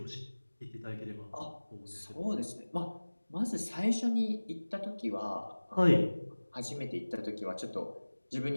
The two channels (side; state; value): both; inverted; correlation -1.00